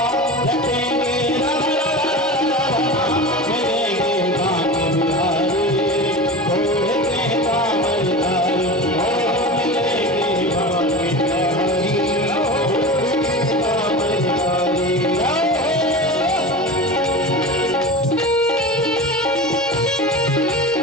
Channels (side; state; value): both; normal; correlation 0.29